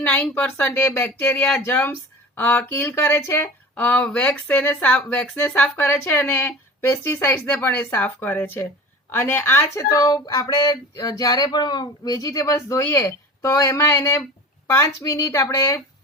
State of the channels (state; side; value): normal; both; correlation 0.36